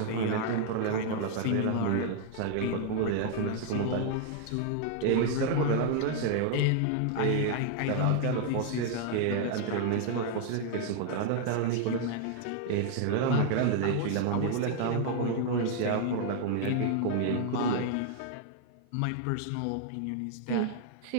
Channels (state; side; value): different; both; correlation 0.00